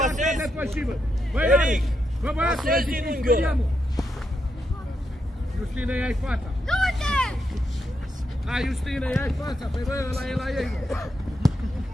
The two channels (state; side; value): normal; both; correlation 0.82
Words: pasezi! te păși, bă! Băi, Eric! Rareș! Bă, băiatule, Pasezi zic din că unghiul ăla. speriam, mă. Justine, ia-i fața! Du-te! Hai, Justine, ia-i fața! Păi, bă, ăla e la ei, mă!